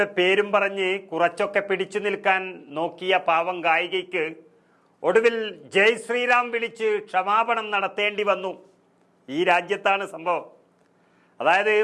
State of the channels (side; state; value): both; identical; correlation 1.00